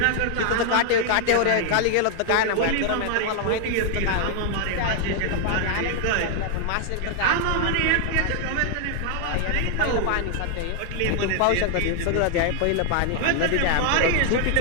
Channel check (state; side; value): different; both; correlation 0.00